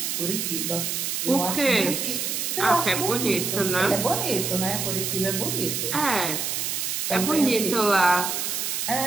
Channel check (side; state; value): right; noise; hiss, 1 dB below the sound